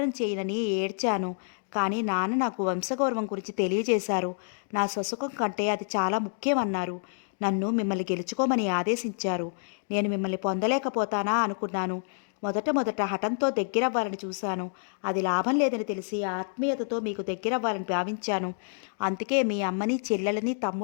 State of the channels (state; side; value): silent; right; digital silence